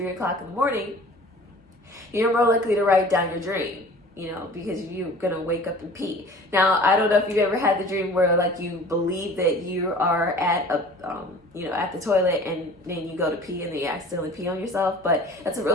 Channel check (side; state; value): both; normal; correlation 0.45